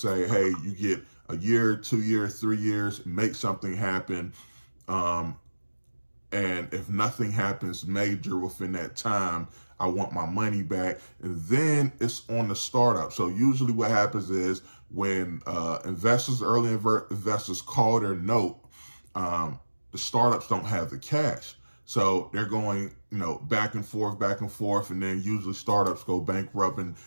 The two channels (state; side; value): inverted; both; correlation -1.00